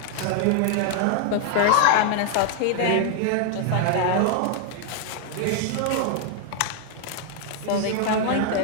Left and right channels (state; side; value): different; both; correlation 0.00